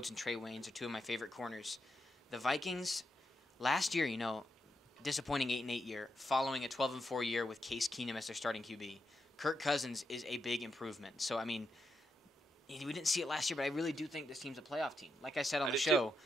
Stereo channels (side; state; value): both; normal; correlation 0.83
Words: and Trey Waynes are two of my favorite corners. The Vikings, last year, disappointing 8-8 year, following a 12-4 year with Case Keenum as their starting QB. Kirk Cousins is a big improvement. So, we didn't see it last year, but I really do think this team's a playoff team. Like I said on the show,